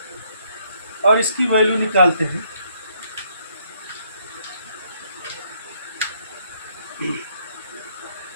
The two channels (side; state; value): both; inverted; correlation -0.69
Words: और इसकी वैल्यू निकालते हैं।